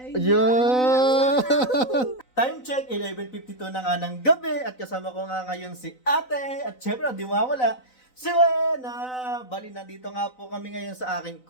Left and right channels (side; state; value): right; late; 4.0 ms